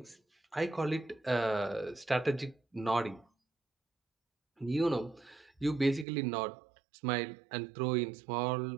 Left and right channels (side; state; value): left; drops out; at 6.1 s